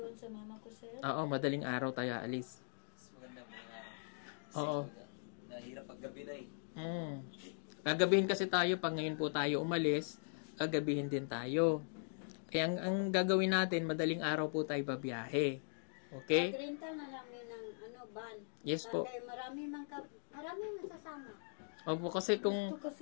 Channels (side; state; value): right; silent; digital silence